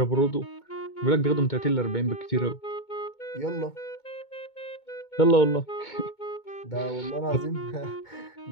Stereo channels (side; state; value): right; late; 2.2 ms